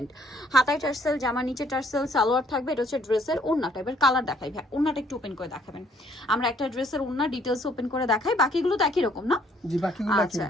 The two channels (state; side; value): normal; both; correlation 0.63